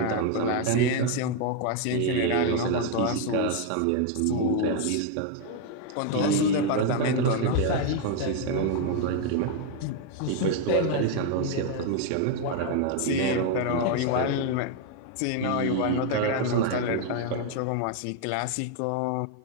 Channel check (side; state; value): both; different; correlation 0.00